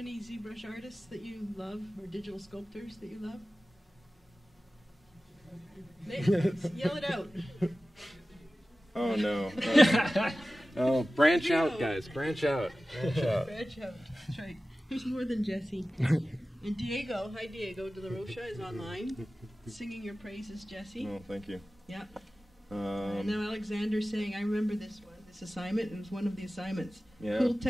ZBrush artists that you love, or digital sculptors that you love? Yell it out. Oh no! Oh, branch out, guys! Branch out! Branch out! Branch out. That's right. There's more than Jesse. And Diego, hi Diego de la Rocha, is online, singing your praises, Jesse. Oh, thank you. Yeah. And now Alexander's saying, I remember this assignment. It was one of the assignments. Yeah. Cool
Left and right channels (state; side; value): normal; both; correlation 0.96